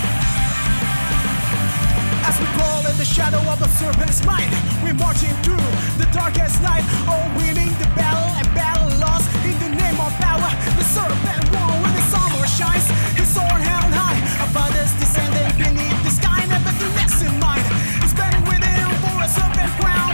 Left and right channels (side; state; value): both; inverted; correlation -1.00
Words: Shadow of a serpent's mind, we're marching through the darkest night, all winning the battle and battle lost in the name of power. The serpent won when the summer shines, his sword held high above us, descending beneath the sky, never to less in mind. He's burning within for a serpent crown,